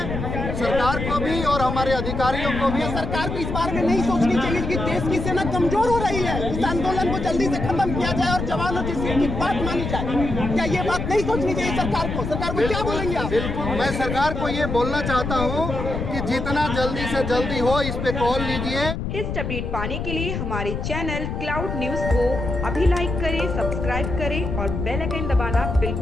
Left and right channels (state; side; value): noise; left; rumble, 4 dB below the sound